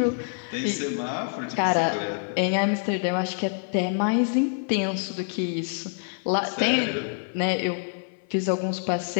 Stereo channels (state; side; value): silent; right; 55 dB below the other